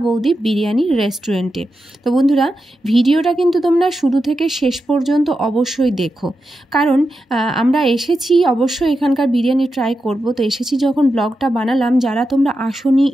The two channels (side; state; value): both; normal; correlation 0.89